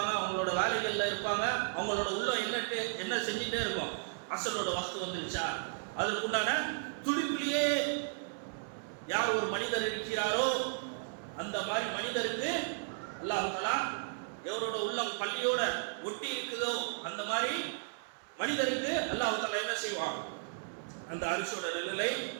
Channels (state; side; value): silent; left; digital silence